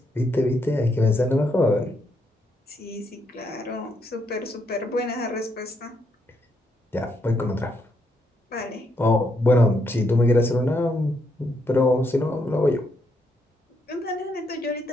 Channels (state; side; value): normal; both; correlation 0.76